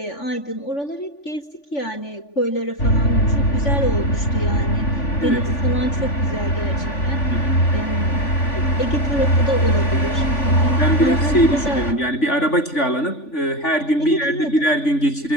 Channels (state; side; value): late; right; 3.5 ms